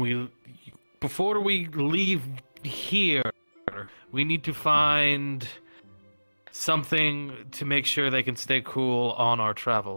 before we leave here, we need to find something to make sure they can stay cool on our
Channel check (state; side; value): inverted; both; correlation -1.00